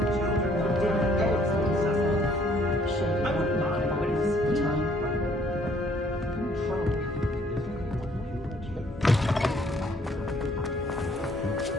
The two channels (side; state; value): both; normal; correlation 0.62